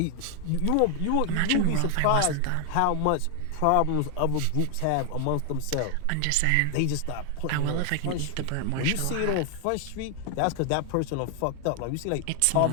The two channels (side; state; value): both; different; correlation 0.00